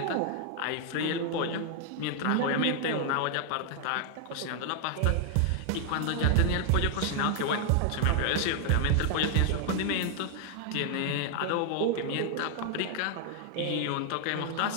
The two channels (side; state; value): both; different; correlation 0.00